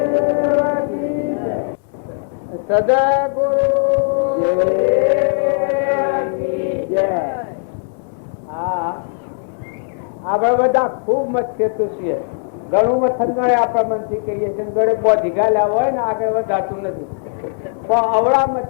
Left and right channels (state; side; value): silent; right; digital silence